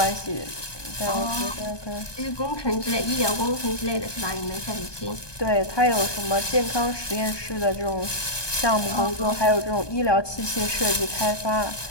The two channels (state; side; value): late; right; 1.2 ms